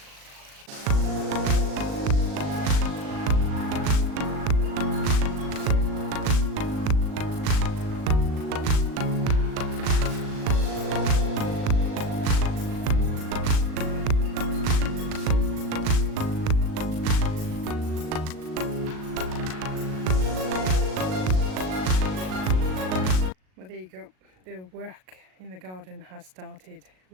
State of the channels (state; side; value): late; left; 38 ms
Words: Well, there you go. The work in the garden has started.